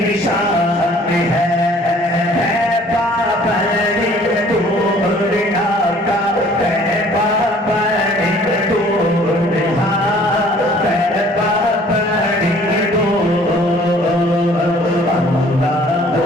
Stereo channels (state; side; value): normal; both; correlation 0.55